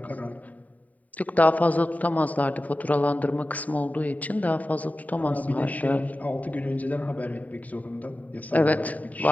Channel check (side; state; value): right; late; 0.073 ms